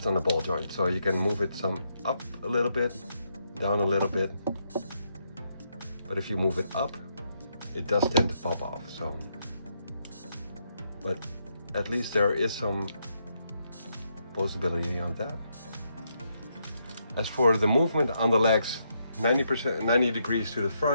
on a ball joint, so you can move it some up a little bit, down a little bit. But if you move it up, it does tend to pop off. So, but at least there is some possibility on that. As for the movement on the legs, 90 degrees to the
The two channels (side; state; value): both; inverted; correlation -0.78